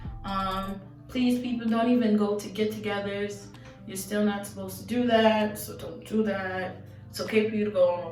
Please, people, don't even go to get-togethers. You're still not supposed to do that, so don't do that. It's okay for you to go on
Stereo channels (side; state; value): both; identical; correlation 1.00